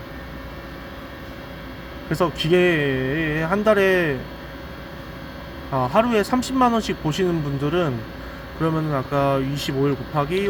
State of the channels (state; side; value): identical; both; correlation 1.00